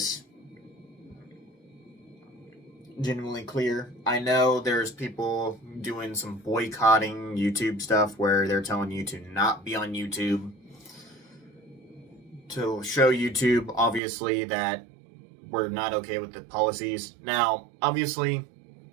genuinely clear. I know there's people doing some boycotting YouTube stuff where they're telling you to not be on YouTube, to show YouTube, obviously, that we're not okay with the policies. Now, obviously,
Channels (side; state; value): left; drops out; at 14.0 s